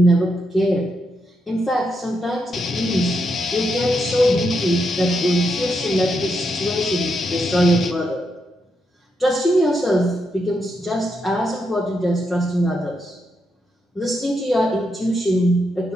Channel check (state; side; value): normal; both; correlation 0.82